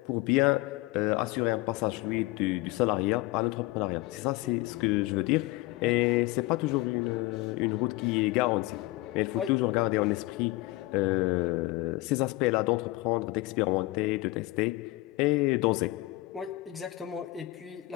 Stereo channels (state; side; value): quieter; right; 20.0 dB